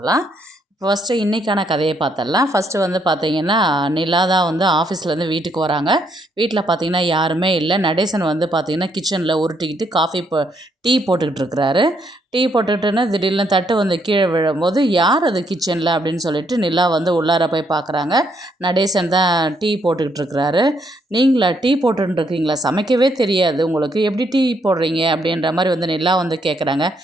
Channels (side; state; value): both; normal; correlation 0.73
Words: ஃபஸ்ட்டு இன்றைக்கான கதையை பார்த்துடலாம். ஃபஸ்ட்டு வந்து பார்த்திங்கன்னா, நிலா தான் வந்து ஆஃபீஸ்லேருந்து வீட்டுக்கு வராங்க. வீட்டில் பார்த்திங்கன்னா யாருமே இல்லை. நடேசன் வந்து பார்த்திங்கன்னா கிச்சனில் உருட்டிக்கிட்டு டீ போட்டுக்கிட்டு இருக்கிறாரு. டீ போட்டுக்கிட்டுன்னு திடீர்னு தட்டு வந்து கீழே விழும்போது, யார் அது கிச்சனில் அப்படின்னு சொல்லிட்டு நிலா வந்து உள்ளார போய் பார்க்குறாங்க. நடேசன் தான் டீ போட்டுக்கிட்டு இருக்கிறாரு. நீங்களா டீ போட்டுருக்கீங்களா? சமைக்கவே தெரியாது உங்களுக்கு, எப்படி டீ போடுறீங்க அப்படின்ற மாதிரி வந்து நிலா வந்து கேட்குறாங்க.